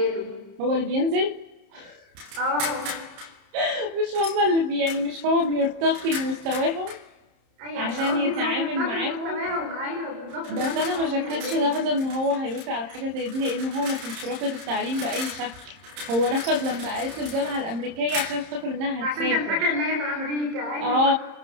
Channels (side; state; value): left; late; 30 ms